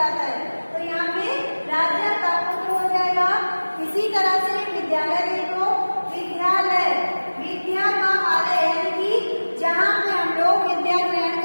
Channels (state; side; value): inverted; both; correlation -1.00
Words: है। तो यहाँ पे राजा का पुत्र हो जाएगा। इसी तरह से विद्यालय देखो, विद्यालय, विद्या का आलय, यानी कि जहाँ पे हम लोग विद्या ग्रहण